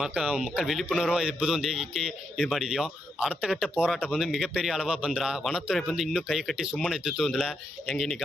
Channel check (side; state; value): both; normal; correlation 0.81